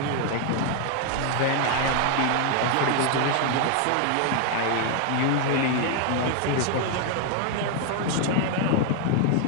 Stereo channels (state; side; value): different; both; correlation 0.00